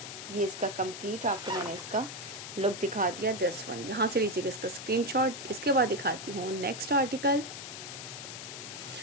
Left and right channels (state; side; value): noise; left; hiss, 9 dB below the sound